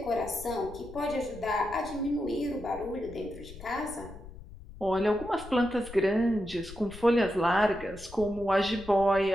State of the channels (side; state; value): left; noise; rumble, 16 dB below the sound